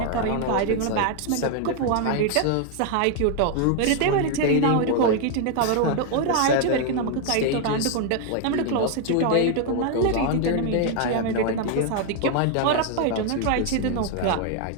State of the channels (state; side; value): different; both; correlation 0.00